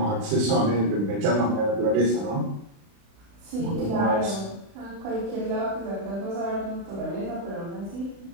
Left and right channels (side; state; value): left; late; 36 ms